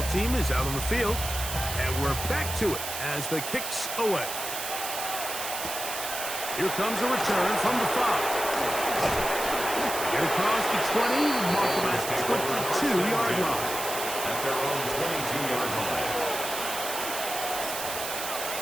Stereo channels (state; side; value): noise; right; hiss, 5 dB below the sound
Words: team is out on the field, and we're back to it as the kick's away. Here comes a return from the 5. Get across the 20, mark them at the 22-yard line. At their own 22-yard line.